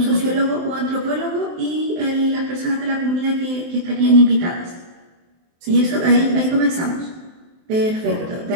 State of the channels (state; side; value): late; left; 23 ms